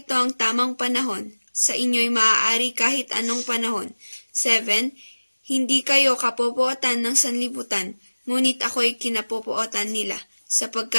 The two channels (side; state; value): both; inverted; correlation -1.00